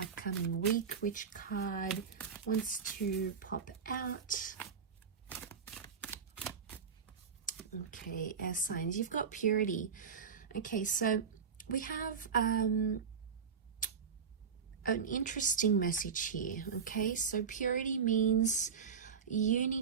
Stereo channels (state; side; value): quieter; left; 6.4 dB